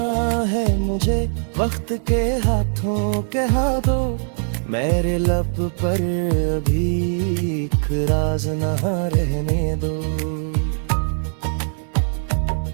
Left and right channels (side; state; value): left; silent; 59 dB below the other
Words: है मुझे वक्त के हाथों कहा दो, मेरे लब पर अभी एक राज ना रहने दो।